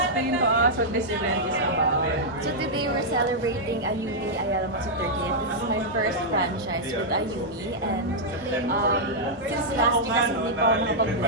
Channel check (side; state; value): both; normal; correlation -0.07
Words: to us what this event is about. So today we're celebrating Ayumi Ayala Matsu 30th. This is my first franchise with Ayumi, and since last year kasi hindi pa ako